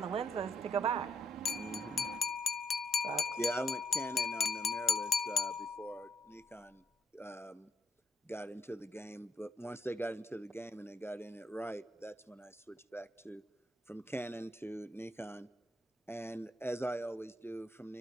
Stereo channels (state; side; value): normal; both; correlation 0.73